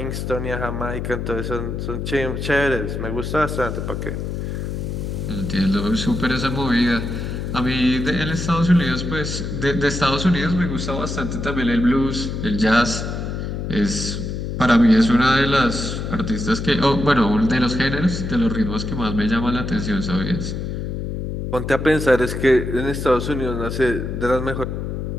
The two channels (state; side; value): noise; left; hum, 4 dB below the sound